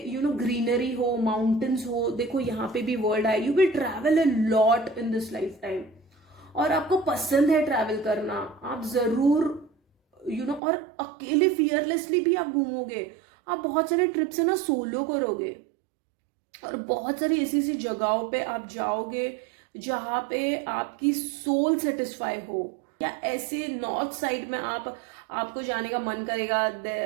ग्रीनरी हो, माउंटेन्स हो। देखो यहाँ पे भी वर्ल्ड है। You will travel a lot in this life time, और आपको पसंद है ट्रैवल करना, आप जरूर और अकेले फियरलेसली भी आप घूमोगे। आप बहुत सारे ट्रिप्स है ना सोलो करोगे, और बहुत सारी ऐसी ऐसी जगहों पे आप जाओगे जहां पे आपकी सोल सेटिस्फाई हो। या ऐसे नॉर्थ साइड में आपको जाने का मन करेगा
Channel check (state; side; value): drops out; left; at 10.6 s